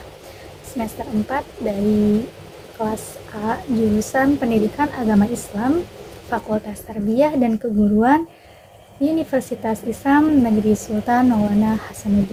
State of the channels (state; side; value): identical; both; correlation 1.00